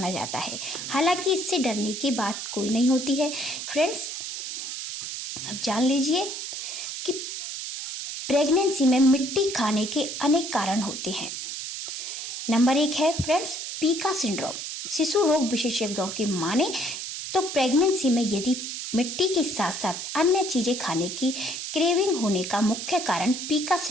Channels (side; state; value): right; noise; hiss, 6 dB below the sound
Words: जाता है। हालांकि इससे डरने की बात कोई नहीं होती है। फ्रेंड्स, अब जान लीजिए कि प्रेगनेंसी में मिट्टी खाने के अनेक कारण होते हैं। नंबर 1 है फ्रेंड्स, पीका सिंड्रोम। शिशु रोग विशेषज्ञों की माने तो प्रेगनेंसी में यदि मिट्टी के साथ साथ अन्य चीज़ें खाने की क्रेविंग होने का मुख्य कारण पीका